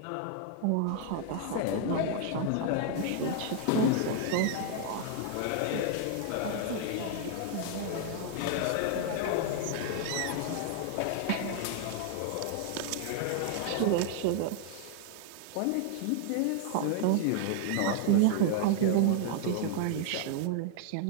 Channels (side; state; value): both; different; correlation 0.00